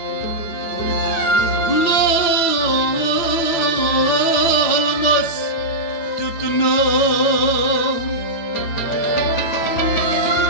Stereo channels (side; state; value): right; late; 8.9 ms